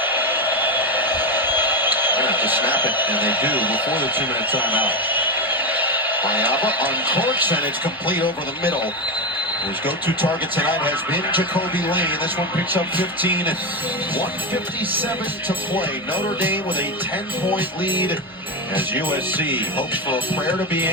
They have to snap it, and they do before the 2-minute timeout. Mayava uncorks, and it's complete over the middle. His go-to target tonight has been Jacoby Lane. This one picks up 15 and 1:57 to play. Notre Dame with a 10-point lead as USC hopes for a prayer to be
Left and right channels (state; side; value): normal; both; correlation 0.13